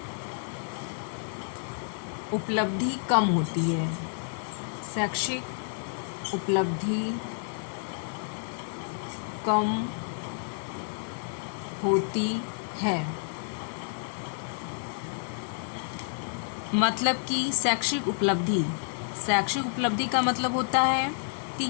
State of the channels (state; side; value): silent; right; digital silence